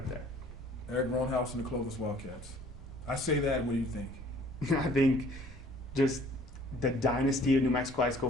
there. Eric Roanhouse and the Clovis Wildcats. I say that. What do you think? I think just the dynasty of New Mexico high school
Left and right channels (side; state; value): both; normal; correlation 0.55